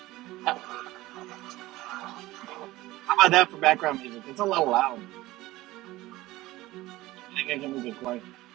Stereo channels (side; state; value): left; quieter; 18.0 dB